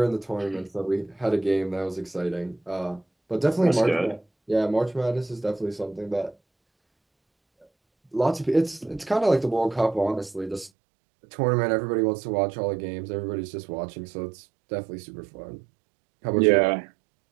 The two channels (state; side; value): drops out; left; at 10.7 s